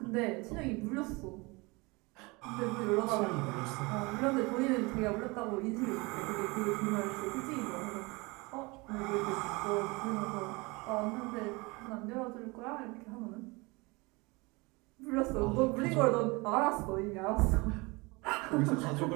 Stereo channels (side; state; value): left; quieter; 25.7 dB